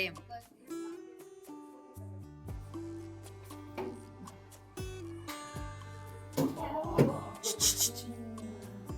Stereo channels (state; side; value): identical; both; correlation 1.00